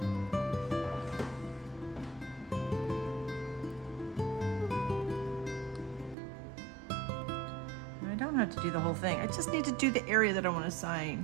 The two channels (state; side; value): drops out; left; at 6.2 s